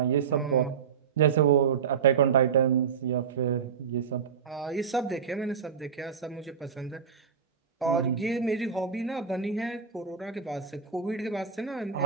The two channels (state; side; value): quieter; left; 6.9 dB